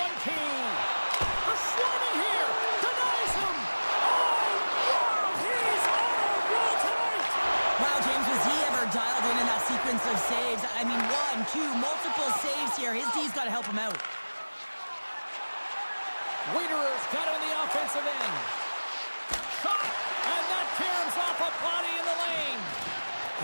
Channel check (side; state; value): both; inverted; correlation -1.00